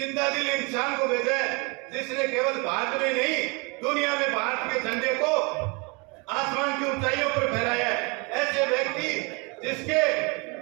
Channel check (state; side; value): quieter; left; 29.8 dB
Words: दिल इंसान को भेजा है जिसने केवल भारत में नहीं दुनिया में भारत के झंडे को आसमान की ऊंचाइयों पर फहराया है। ऐसे व्यक्ति जिसके,